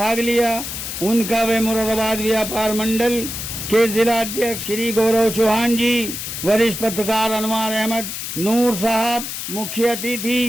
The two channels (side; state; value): left; noise; hiss, 6 dB below the sound